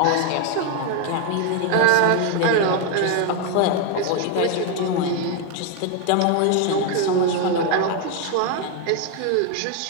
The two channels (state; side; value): different; both; correlation 0.01